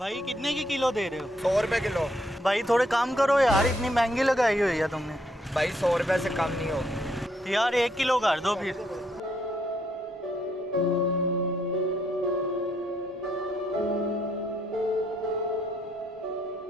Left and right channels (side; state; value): both; normal; correlation 0.73